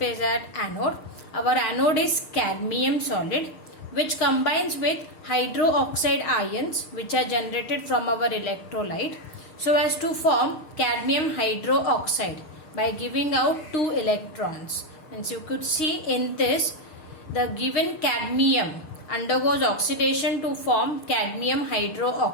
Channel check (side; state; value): right; late; 6.6 ms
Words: at anode. Our anode is cadmium solid, which combines with hydroxide ions which are generated from our electrolyte so as to form cadmium hydroxide by giving out 2 electrons. And you could see in this, the given cadmium undergoes oxidation to form cadmium